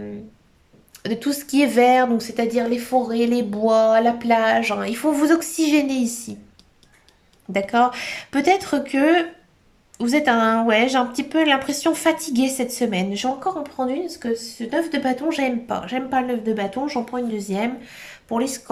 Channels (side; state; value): both; identical; correlation 1.00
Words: de tout ce qui est vert, donc c'est-à-dire les forêts, les bois, la plage, hein. Il faut vous oxygéner ici. D'accord? Peut-être que vous êtes ouais, j'ai un petit peu l'impression fatiguée cette semaine. Je vais encore en prendre une parce que ce 9 de bâton, j'aime pas. J'aime pas le 9 de bâton, j'en prends une deuxième. Pour les